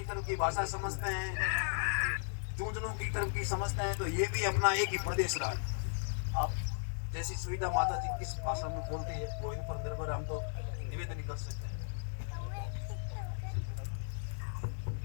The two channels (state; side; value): silent; right; 54 dB below the other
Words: तरफ की भाषा समझते हैं, झुंझुनू की तरफ की समझते हैं, तो ये भी अपना एक ही प्रदेश रहा है। आप जैसी सुविधा माता जी किस भाषा में बोलती है वो इन पर निर्भर, हम तो निवेदन कर सकते हैं।